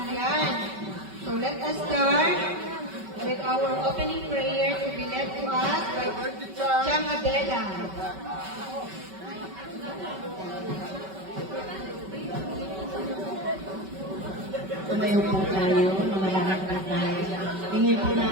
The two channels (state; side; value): late; left; 5.2 ms